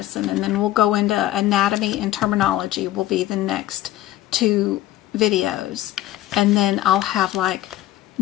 and then we'll go into anatomy and terminology will be the next 2 videos, and then I'll have like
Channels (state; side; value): quieter; right; 14.5 dB